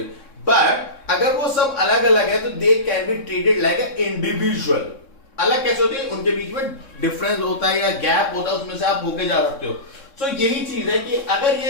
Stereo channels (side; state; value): right; late; 3.6 ms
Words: But अगर वो सब अलग अलग है, तो they can be treated like a individual. अलग कैसे होती है? उनके बीच में डिफरेंस होता है या गैप होता है, उसमें से आप होके जा सकते हो. तो यही चीज है कि अगर